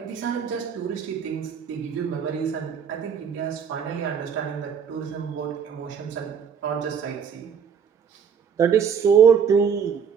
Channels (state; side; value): quieter; left; 7.0 dB